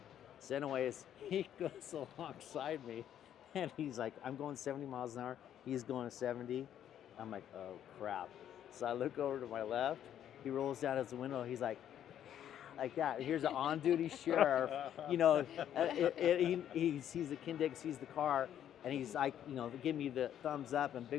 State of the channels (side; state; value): right; quieter; 10.3 dB